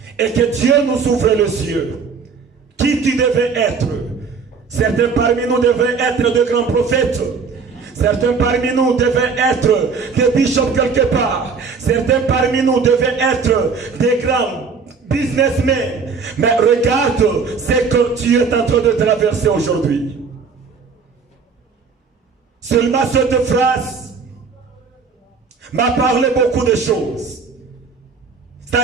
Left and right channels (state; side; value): quieter; left; 5.3 dB